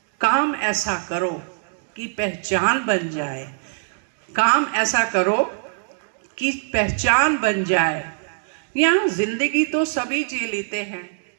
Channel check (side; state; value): left; silent; digital silence